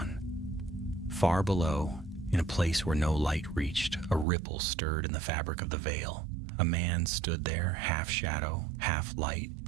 Far below, in a place where no light reached, a ripple stirred in the fabric of the veil. A man stood there, half shadow, half light,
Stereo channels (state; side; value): drops out; left; at 4.2 s